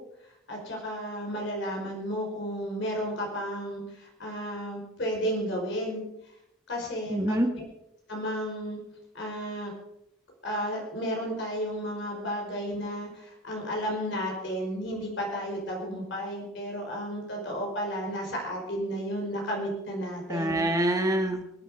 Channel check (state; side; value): normal; both; correlation 0.38